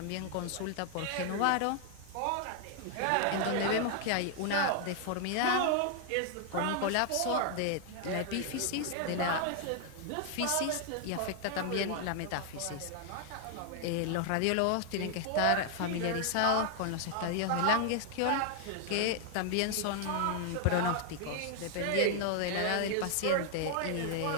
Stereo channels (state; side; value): different; both; correlation 0.00